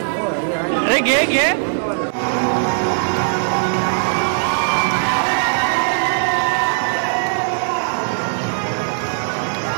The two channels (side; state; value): left; silent; digital silence